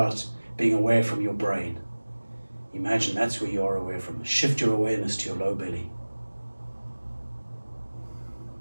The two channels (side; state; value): both; inverted; correlation -1.00